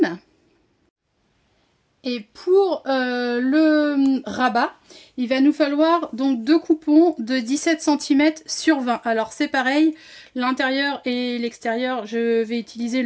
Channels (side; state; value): both; identical; correlation 1.00